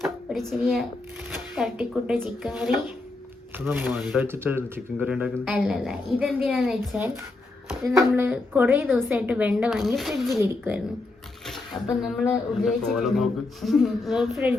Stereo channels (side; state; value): right; quieter; 3.2 dB